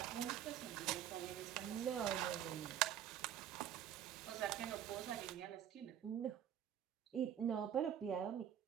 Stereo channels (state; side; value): quieter; left; 10.1 dB